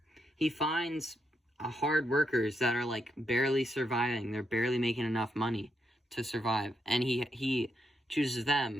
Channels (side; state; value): both; normal; correlation 0.81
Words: finds hard workers that are like barely surviving. They're barely making enough money to survive, and he chooses